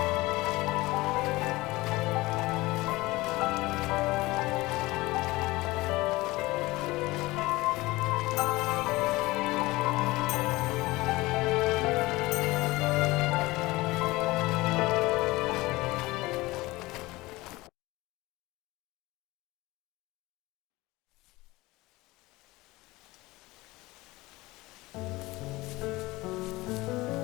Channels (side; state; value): right; quieter; 20.5 dB